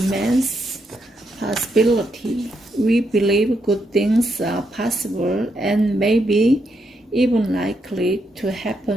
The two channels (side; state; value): both; normal; correlation 0.80